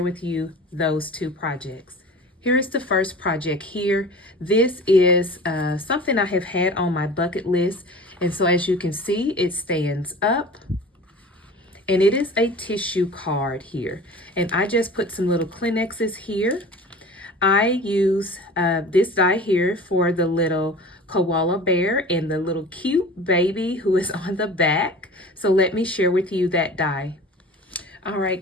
with you those two projects. Here is the first project here. This is something I have had on my bucket list, and so as you can see, it stands up. And it is a tissue card here. And I just put some little Kleenexes here. I use this die here for the little koala bear and the little cute baby who is on the back. So let me share with you that die. All right,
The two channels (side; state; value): both; normal; correlation 0.40